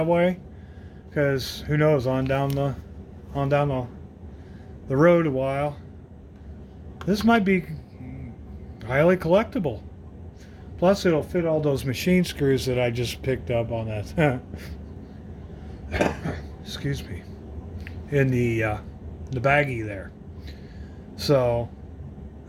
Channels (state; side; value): identical; both; correlation 1.00